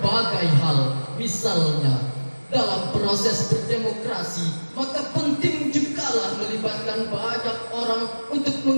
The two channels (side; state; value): both; inverted; correlation -1.00